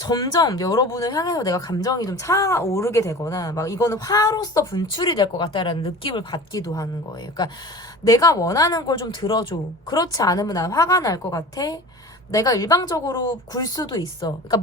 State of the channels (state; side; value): normal; both; correlation 0.38